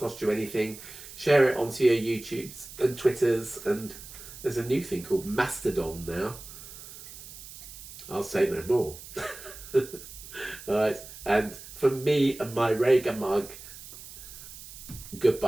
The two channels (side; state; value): right; noise; hiss, 15 dB below the sound